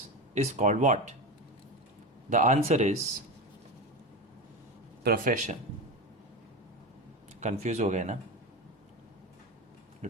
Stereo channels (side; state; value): both; normal; correlation 0.21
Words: is called what? The answer is profession. Confused हो गए ना?